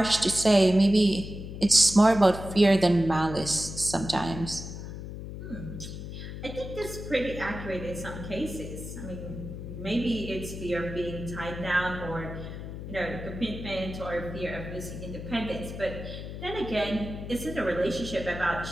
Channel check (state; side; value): noise; left; hum, 9 dB below the sound